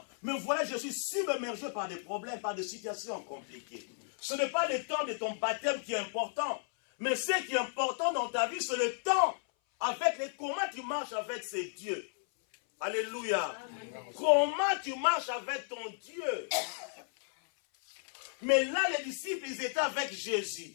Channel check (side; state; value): right; silent; 55 dB below the other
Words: Mais voilà, je suis submergé par des problèmes, par des situations compliquées. Ce n'est pas le temps de ton baptême qui est important. Mais ce qui est important dans ta vie, c'est le temps avec comment tu marches avec ces dieux. Alléluia. Amen. Comment tu marches avec ton Dieu. Mais là, les disciples, ils étaient avec